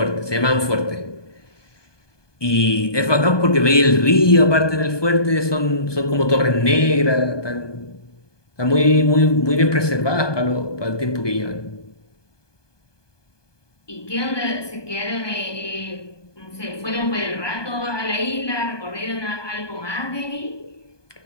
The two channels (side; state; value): right; late; 1.2 ms